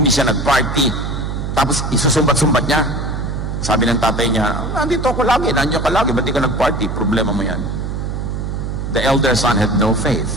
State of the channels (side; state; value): right; noise; hum, 4 dB below the sound